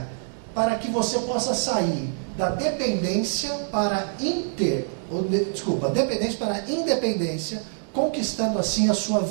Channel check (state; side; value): silent; left; digital silence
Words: para que você possa sair da dependência para dependência para independência, conquistando assim a sua